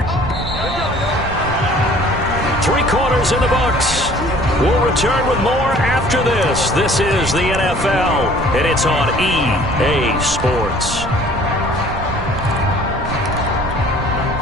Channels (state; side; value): noise; right; rumble, 8 dB below the sound